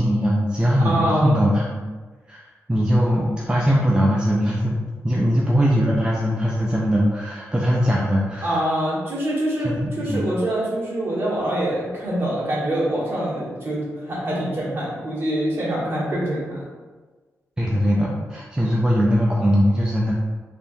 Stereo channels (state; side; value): normal; both; correlation 0.88